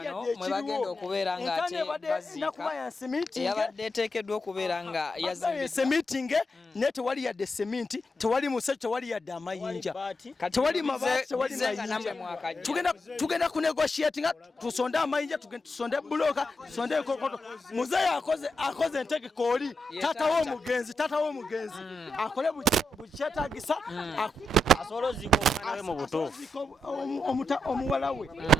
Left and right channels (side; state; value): both; normal; correlation 0.86